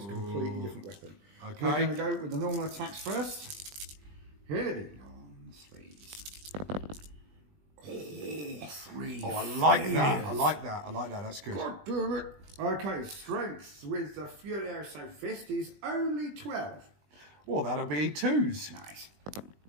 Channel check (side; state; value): left; late; 20 ms